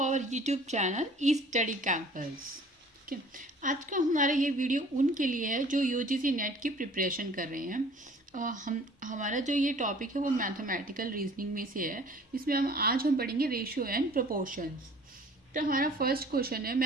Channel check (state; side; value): normal; both; correlation 0.51